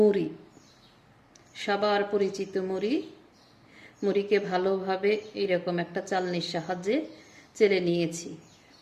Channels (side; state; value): both; identical; correlation 1.00